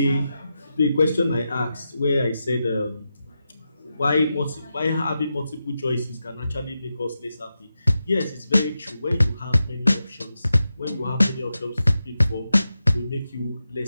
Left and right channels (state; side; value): inverted; both; correlation -0.89